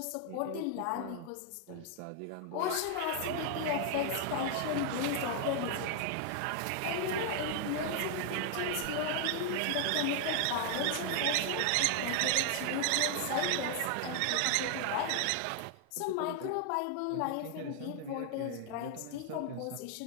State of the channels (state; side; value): different; both; correlation 0.00